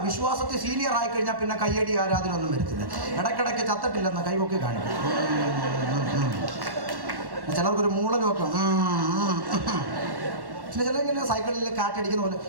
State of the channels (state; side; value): late; left; 1.1 ms